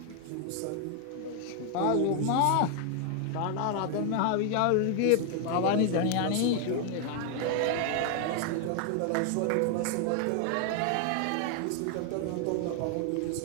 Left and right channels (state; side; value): different; both; correlation 0.00